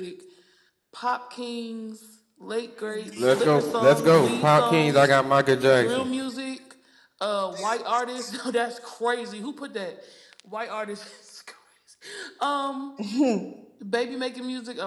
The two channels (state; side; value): identical; both; correlation 1.00